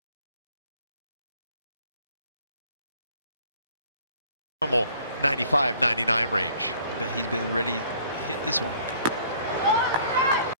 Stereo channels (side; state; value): both; inverted; correlation -0.56